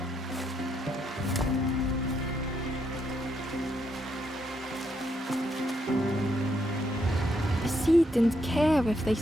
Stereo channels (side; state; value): both; normal; correlation 0.77